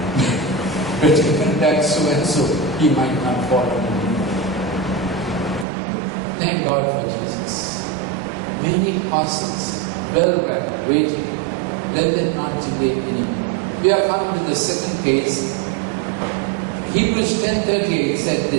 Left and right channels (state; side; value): drops out; left; at 5.7 s